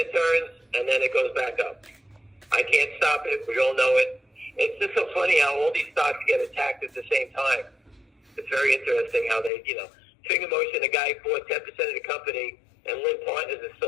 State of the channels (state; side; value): drops out; right; at 9.5 s